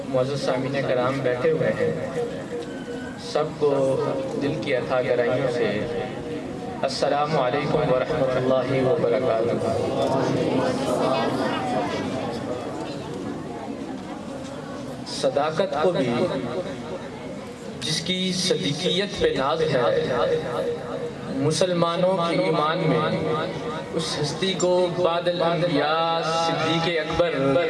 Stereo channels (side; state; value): both; identical; correlation 1.00